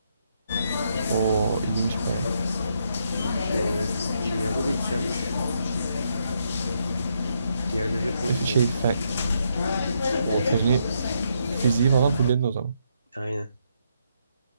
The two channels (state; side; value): inverted; both; correlation -0.77